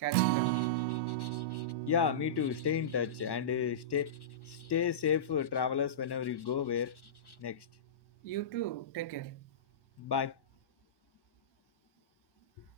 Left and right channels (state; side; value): late; right; 1.1 ms